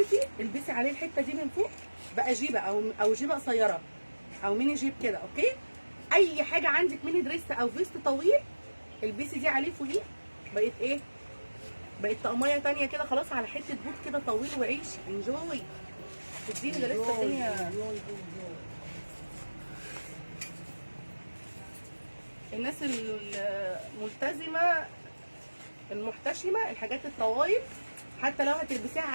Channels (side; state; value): both; inverted; correlation -1.00